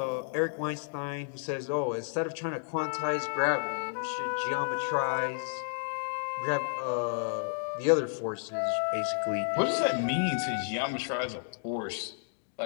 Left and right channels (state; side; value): silent; right; digital silence